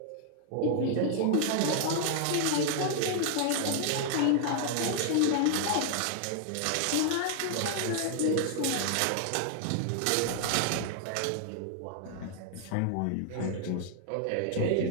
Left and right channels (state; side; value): different; both; correlation 0.00